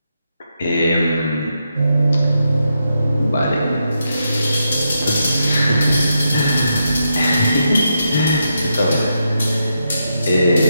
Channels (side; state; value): both; inverted; correlation -0.83